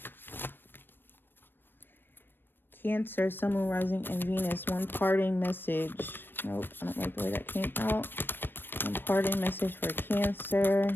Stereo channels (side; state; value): right; late; 0.096 ms